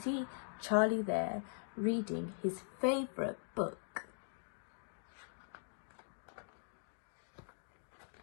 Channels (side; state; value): right; silent; digital silence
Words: Charlie there reading his favourite book.